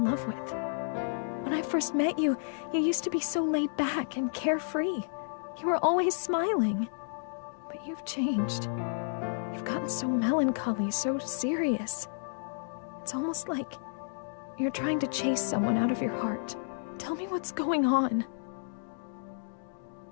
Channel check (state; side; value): silent; right; digital silence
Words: love with. When I first met you, you used to be so laid back and carefree. You were always smiling. But you've changed. You've gotten so melancholy, so serious. It's almost like you're trying to chase someone out of your heart. Tell me what's going on.